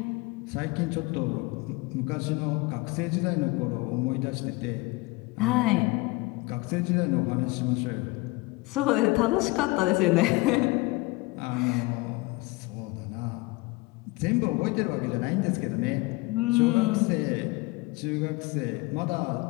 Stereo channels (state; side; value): quieter; right; 23.1 dB